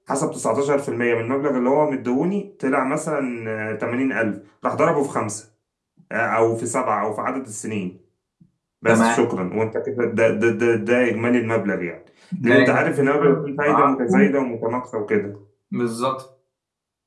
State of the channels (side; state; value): both; identical; correlation 1.00